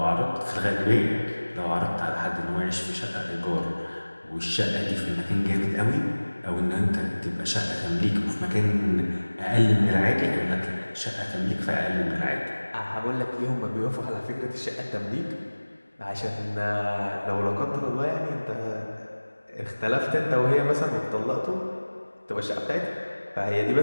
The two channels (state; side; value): inverted; both; correlation -1.00